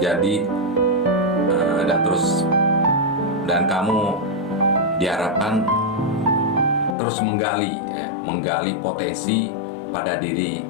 jadi dan kamu diharapkan terus menggali potensi pada diri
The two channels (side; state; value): right; drops out; at 7.0 s